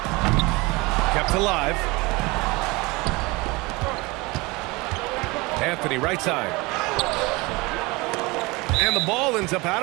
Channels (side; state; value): left; quieter; 24.0 dB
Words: Kept alive. Anthony right side. And the ball ends up